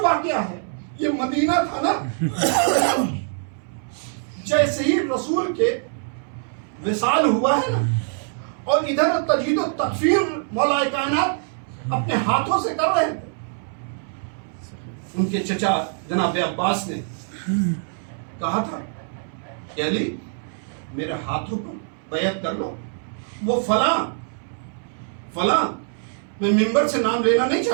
واقعہ ہے، یہ مدینہ تھا نا، جیسے ہی رسول کے وصال ہوا ہے نا، اور ادھر تجدید و تکفیر مولا کائنات اپنے ہاتھوں سے کر رہے تھے. ان کے چچا جناب عباس نے کہا تھا کہ علی میرے ہاتھوں پر بیعت کر لو. وہ فلاں میں ممبر سے نام لینا نہیں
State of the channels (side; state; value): left; silent; 63 dB below the other